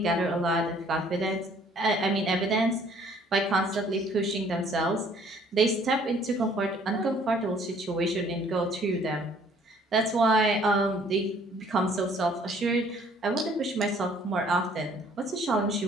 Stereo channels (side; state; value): both; normal; correlation 0.59